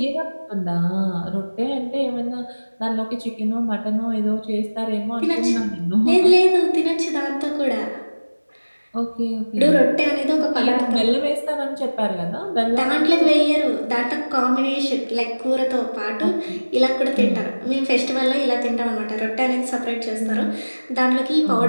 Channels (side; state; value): both; inverted; correlation -1.00